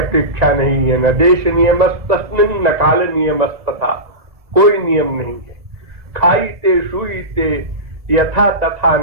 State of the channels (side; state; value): left; late; 1.7 ms